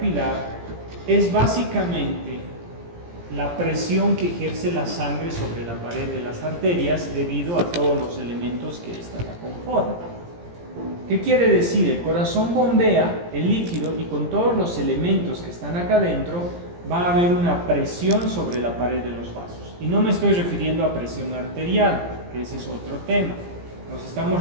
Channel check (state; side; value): late; left; 17 ms